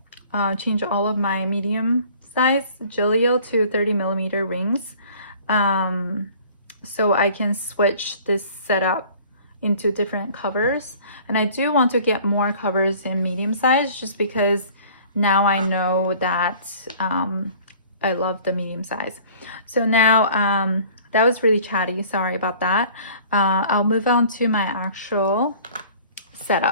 change all of my medium size Gillio to 30mm rings, so I can switch this setup into different covers. And I do want to get more covers in medium size, just because now I know that I love the medium size. So now that was really chatty, sorry about that. I'll move on to my actual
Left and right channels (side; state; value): both; inverted; correlation -0.50